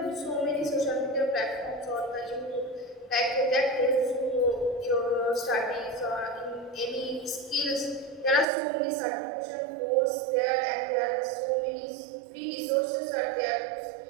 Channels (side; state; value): left; drops out; at 8.5 s